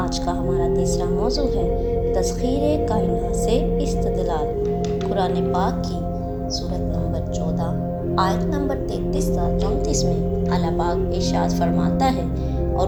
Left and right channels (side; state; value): both; identical; correlation 1.00